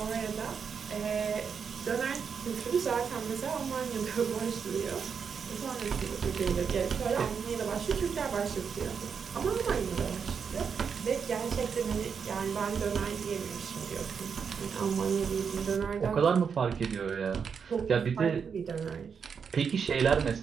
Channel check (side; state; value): left; quieter; 6.4 dB